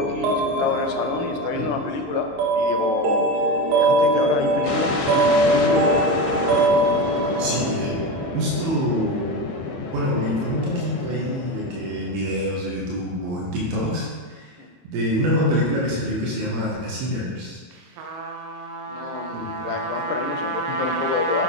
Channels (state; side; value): late; left; 22 ms